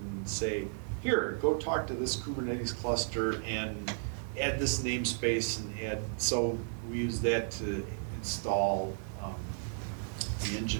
say, here, go talk to this Kubernetes cluster and add this namespace and add, so we use that to install the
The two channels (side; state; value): left; silent; digital silence